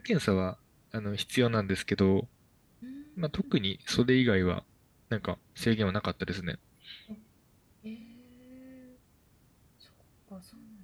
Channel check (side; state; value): both; identical; correlation 1.00